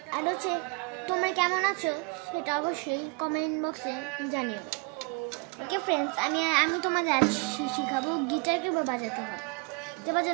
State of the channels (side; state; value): left; quieter; 29.6 dB